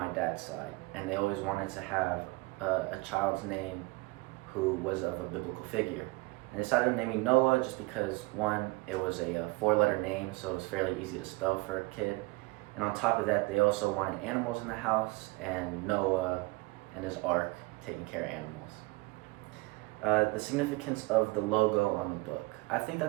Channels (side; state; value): left; quieter; 24.0 dB